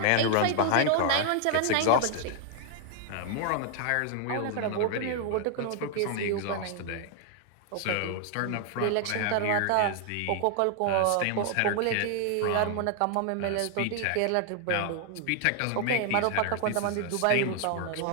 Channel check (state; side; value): different; both; correlation 0.00